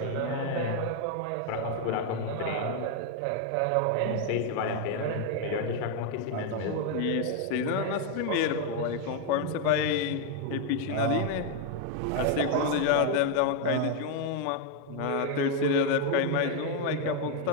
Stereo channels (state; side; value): different; both; correlation 0.01